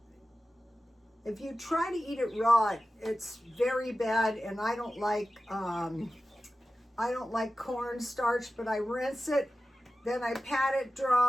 If you try to eat it raw, it's very bad, and I don't like cornstarch, but I rinse it, then I pat it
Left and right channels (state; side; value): normal; both; correlation 0.94